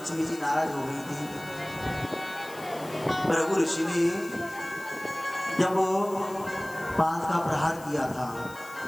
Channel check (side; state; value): left; noise; hiss, 19 dB below the sound